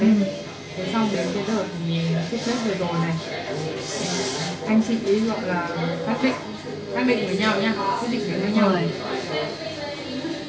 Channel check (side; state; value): both; identical; correlation 1.00